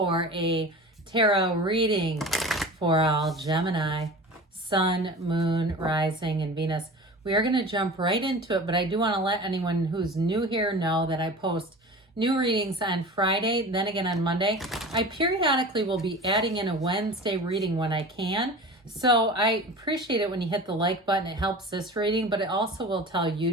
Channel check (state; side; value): normal; both; correlation 0.36